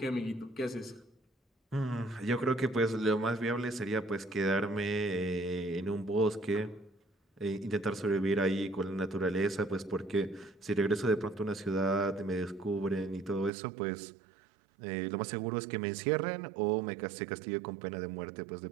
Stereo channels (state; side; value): drops out; left; at 13.5 s